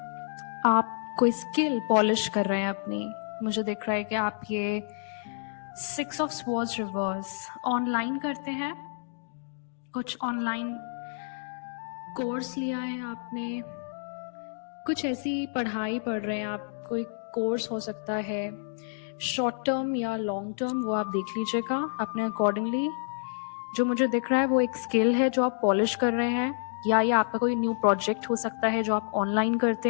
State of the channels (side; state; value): right; silent; digital silence